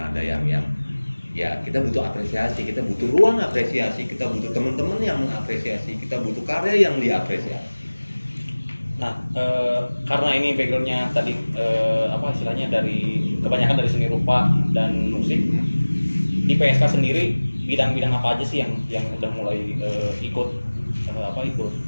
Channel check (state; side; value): inverted; both; correlation -1.00